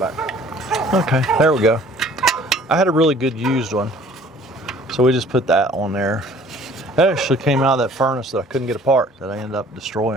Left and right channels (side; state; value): both; normal; correlation 0.53